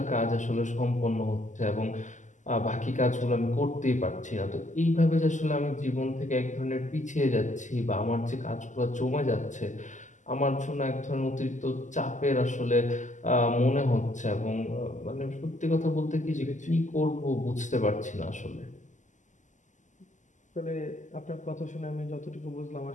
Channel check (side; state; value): right; late; 0.36 ms